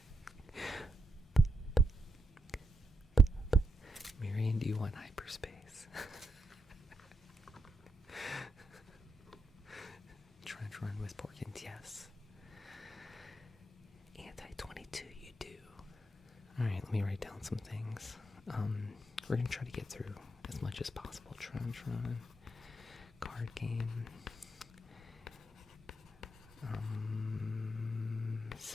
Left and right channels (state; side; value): normal; both; correlation 0.81